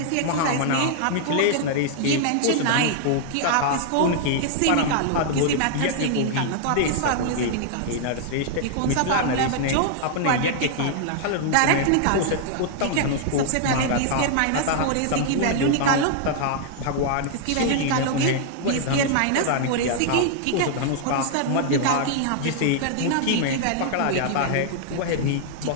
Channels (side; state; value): both; different; correlation -0.01